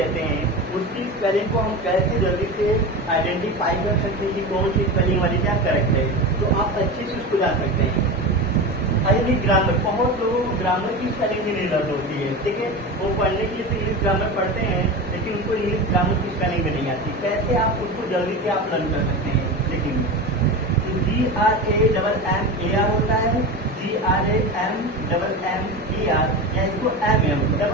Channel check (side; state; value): both; normal; correlation 0.25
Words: हैं उसकी स्पेलिंग को हम कैसे जल्दी से आइडेंटिफाई कर सकते हैं कि कौन सी स्पेलिंग वाली क्या करेक्ट है, तो आप अच्छे से उसको जान सकते हैं। हाईली ग्रामर, बहुत लोगों को ग्रामर की स्पेलिंग भी नहीं लर्न होती है। ठीक है, वो पढ़ने के लिए तो इंग्लिश ग्रामर पढ़ते हैं लेकिन उनको इंग्लिश ग्रामर की स्पेलिंग भी नहीं आती। कैसे आप उसको जल्दी से आप लर्न कर सकते हैं, देखेंगे GRAMMAR होता है, GRAMMER, या इसको MM,